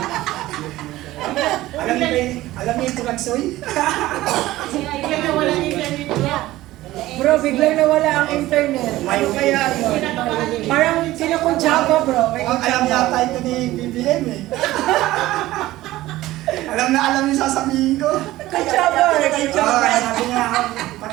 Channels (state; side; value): quieter; left; 16.5 dB